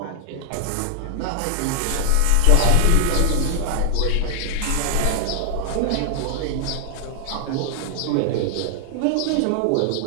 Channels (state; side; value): different; both; correlation 0.00